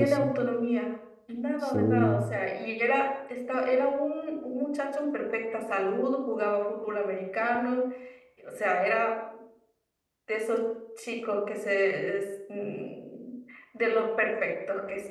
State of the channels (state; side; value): identical; both; correlation 1.00